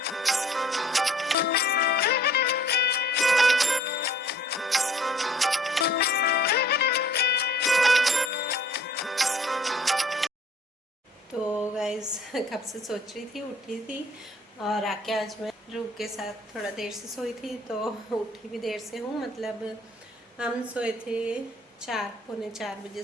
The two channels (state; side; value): normal; both; correlation 0.55